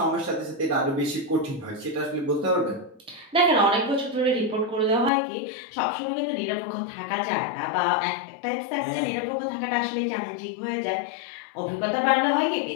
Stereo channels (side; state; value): right; drops out; at 5.1 s